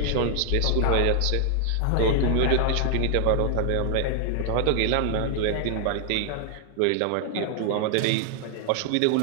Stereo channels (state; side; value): different; both; correlation 0.00